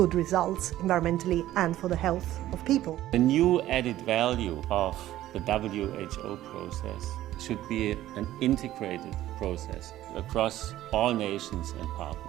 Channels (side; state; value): left; quieter; 14.1 dB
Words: results environmentally and for the health of people. The new added value of the WHO process should be an integrated process across all nations and